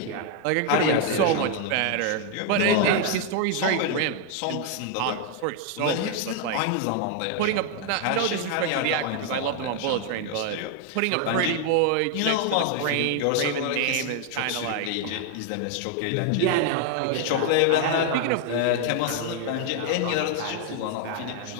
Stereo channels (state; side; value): different; both; correlation 0.00